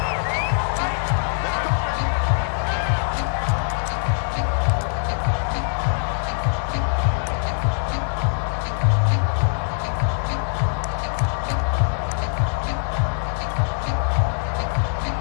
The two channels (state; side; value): silent; right; digital silence